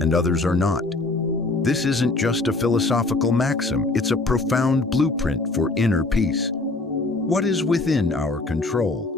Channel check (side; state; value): right; quieter; 3.1 dB